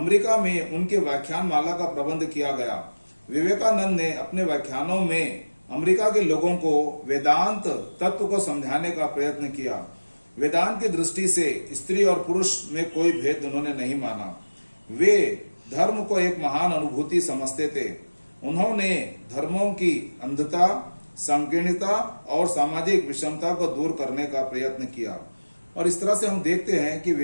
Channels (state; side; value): inverted; both; correlation -1.00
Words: में उनके व्याख्यान माला का प्रबंध किया गया। विवेकानंद ने अपने व्याख्यानों में अमेरिका के लोगों को वेदांत तत्व को समझाने का प्रयत्न किया। वेदांत की दृष्टि से स्त्री और पुरुष में कोई भेद उन्होंने नहीं माना। वे धर्म को एक महान अनुभूति समझते थे। उन्होंने धर्मों की अंधता, संकीर्णता और सामाजिक विषमता को दूर करने का प्रयत्न किया। और इस तरह से हम देखते हैं कि